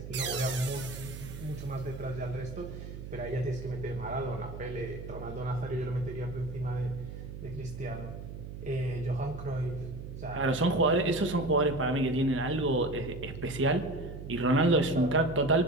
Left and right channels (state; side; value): noise; right; hum, 10 dB below the sound